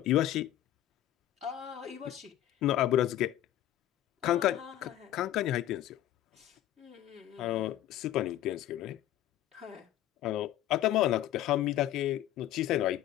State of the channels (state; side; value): quieter; right; 13.0 dB